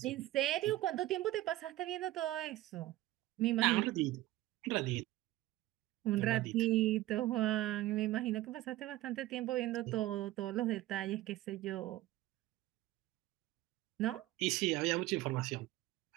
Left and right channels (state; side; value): quieter; left; 16.2 dB